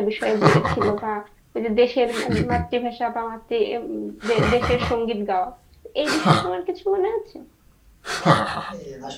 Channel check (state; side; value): identical; both; correlation 1.00